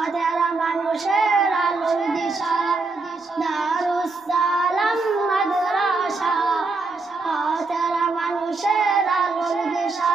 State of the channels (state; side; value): quieter; left; 3.8 dB